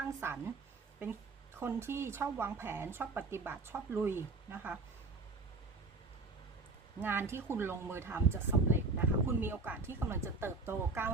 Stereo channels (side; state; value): left; quieter; 3.7 dB